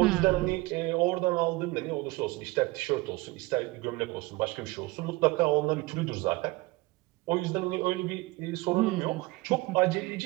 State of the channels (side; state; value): left; quieter; 22.2 dB